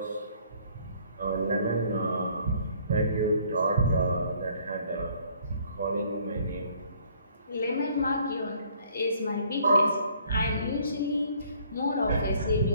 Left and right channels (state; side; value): inverted; both; correlation -0.60